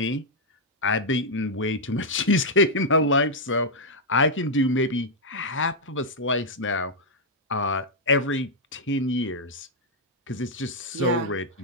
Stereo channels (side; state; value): both; normal; correlation -0.03